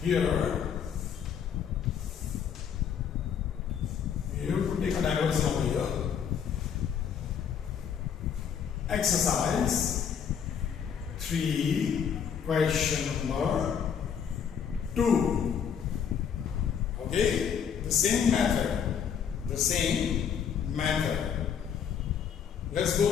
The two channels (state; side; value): quieter; right; 7.7 dB